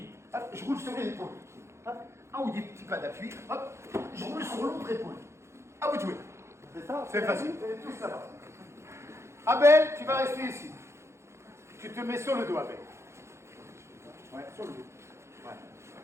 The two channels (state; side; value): late; left; 0.13 ms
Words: Hop, je roule sur les épaules. Hop, un ou deux petits pas d'appui. Hop, je roule sur l'autre épaule. À vous de jouer. C'est ça. C'est facile. Vous allez tous là-bas. Abel, tu vas rester ici. Tu te mets sur le dos, Abel. Ouais, sur le dos. Ouais.